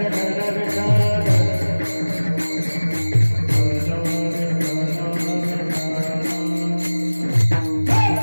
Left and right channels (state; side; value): inverted; both; correlation -1.00